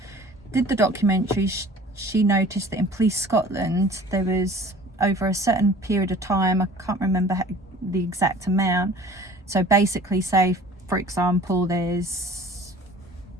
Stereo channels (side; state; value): both; normal; correlation 0.46